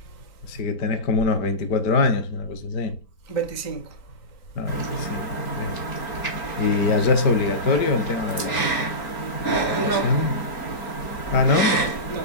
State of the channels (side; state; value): right; late; 4.4 ms